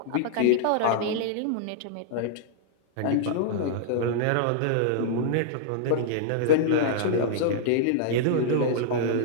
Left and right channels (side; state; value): both; different; correlation -0.02